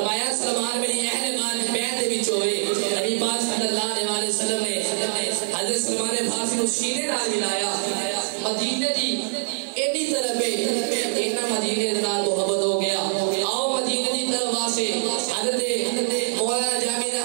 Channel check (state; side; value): silent; left; digital silence